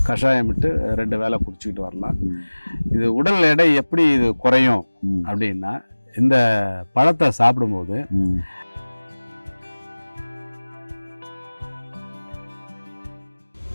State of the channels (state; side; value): inverted; both; correlation -1.00